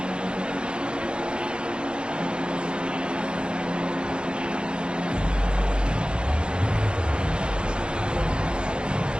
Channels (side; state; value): left; late; 0.053 ms